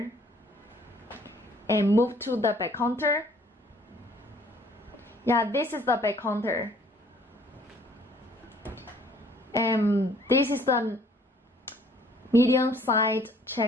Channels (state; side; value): normal; both; correlation 0.58